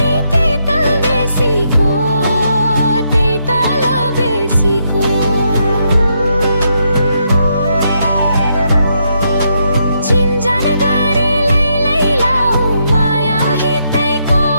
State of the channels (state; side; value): inverted; both; correlation -0.78